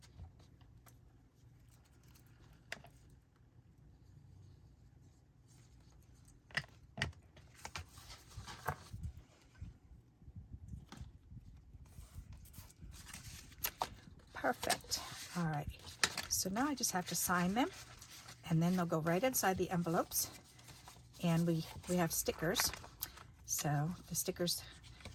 perfect. All right, so now I just have to sign them, and then they'll go right inside the envelopes. And we have stickers, so the stickers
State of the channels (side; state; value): both; identical; correlation 1.00